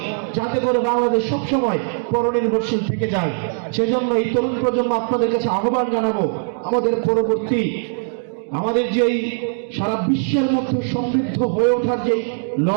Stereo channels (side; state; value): left; silent; 66 dB below the other